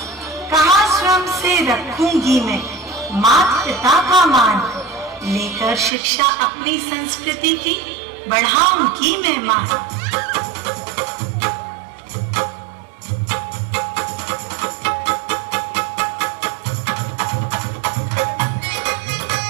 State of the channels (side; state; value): left; drops out; at 5.9 s